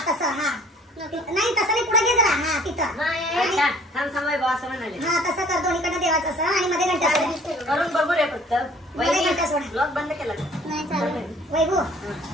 तसं हा नाही तसं नाही पुढे घे जरा हा तिथं थांब थांब वैभव असं म्हणाले हा तसं कर दोन्हीकडनं देवाचं असं आणि मध्ये घंटा करून बघू रे फक्त. ब्लॉग बंद केला नाही वैभव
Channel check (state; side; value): normal; both; correlation 0.54